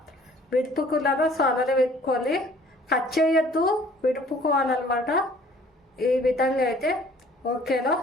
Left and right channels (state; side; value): normal; both; correlation 0.55